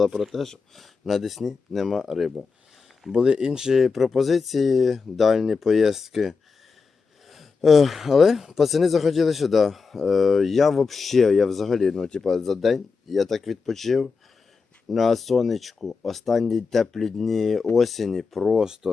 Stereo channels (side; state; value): right; quieter; 4.9 dB